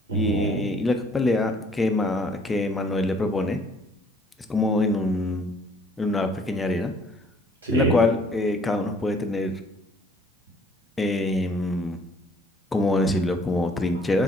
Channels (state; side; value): normal; both; correlation 0.59